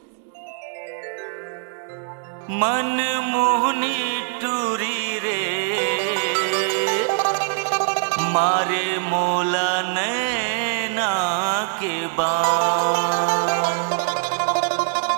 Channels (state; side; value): silent; left; digital silence